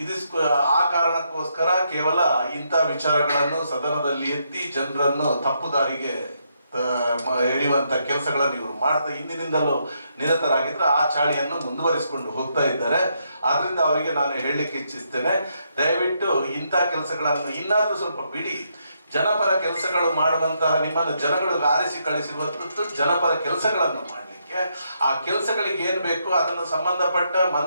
ಆ ಕಾರಣಕ್ಕೋಸ್ಕರ ಕೇವಲ ಇಂಥ ವಿಚಾರಗಳನ್ನು ಸದನದಲ್ಲಿ ಎತ್ತಿ ಜನರನ್ನು ತಪ್ಪು ದಾರಿಗೆ ಎಳೆಯುವಂತ ಕೆಲಸಗಳನ್ನು ಇವರು ಮಾಡ್ತಾ ಹಿಂದಿನಿಂದಲೂ ನಿರತರಾಗಿದ್ರೆ ಆ ಚಾಳಿಯನ್ನು ಮುಂದುವರಿಸಿಕೊಂಡು ಹೋಗ್ತಾ ಇದ್ದಾರೆ. ಆದ್ರಿಂದ ಅವರಿಗೆ ನಾನು ಹೇಳಲಿಕ್ಕೆ ಇಚ್ಛಿಸ್ತೇನೆ, ದಯವಿಟ್ಟು ಇಂಥ ಕೆಲಸಗಳನ್ನು ಇನ್ನಾದ್ರೂ ಸ್ವಲ್ಪ ಬಿಡಿ. ಜನಪರ ಕೆಲಸಗಳು ಮಾಡುವಂತಹ ನಿಮ್ಮನ್ನು ಜನಗಳು ಆರಿಸಿ ಕಳಿಸಿರುವಂಥದ್ದು ಜನಪರ ಕೆಲಸಗಳನ್ನು ಮಾಡಲಿಕ್ಕೆ. ಆ ಕೆಲಸಗಳಿಗೆ ಏನ್ ಬೇಕು ಅದನ್ನು ಸಂಬಂಧಪಟ್ಟ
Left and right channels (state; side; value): inverted; both; correlation -0.77